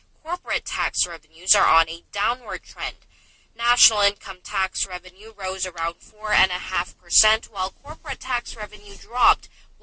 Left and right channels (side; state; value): both; identical; correlation 1.00